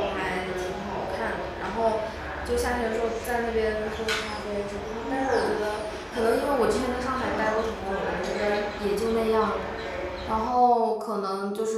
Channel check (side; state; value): both; identical; correlation 1.00